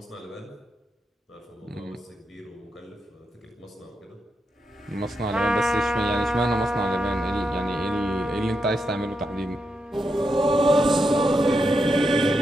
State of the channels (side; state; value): both; normal; correlation 0.84